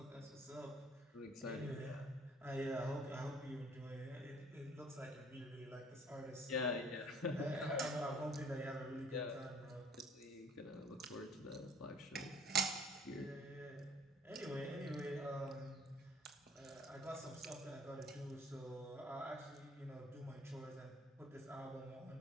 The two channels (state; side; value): normal; both; correlation 0.54